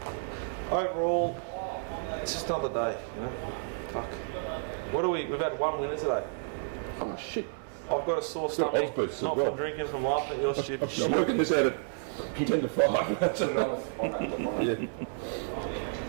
overall, it's just not the day. You know? Fuck. What are we? We've had 1 winner today. Oh shit. I've got a source. It's got odds boosts as Not well. from drinking, from laughing at your shit. I'm working this out at 10 to 5. on that.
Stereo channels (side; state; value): left; silent; digital silence